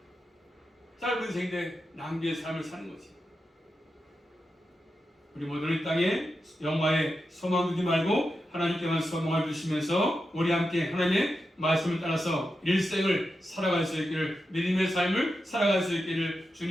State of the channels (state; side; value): normal; both; correlation 0.89